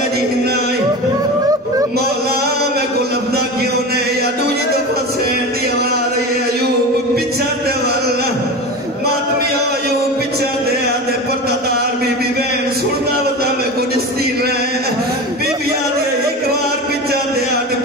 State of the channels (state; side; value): normal; both; correlation 0.28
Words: جہنائی مولا میں کو لفظہ کیوں نے یا دوجی دفعہ سین دی آواز ہے ایوب پچھا دے والا ماتمی ایوب پچھا دے آدھے پردادار بی بی بین سننا وطا میں کو جستی رہے بی بی آدھے ایک بار پچھا دے آدھے